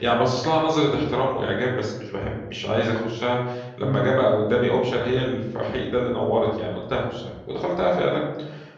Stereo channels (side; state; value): both; identical; correlation 1.00